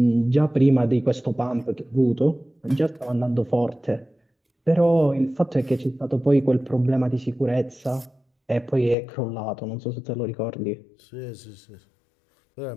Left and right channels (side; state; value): right; drops out; at 9.0 s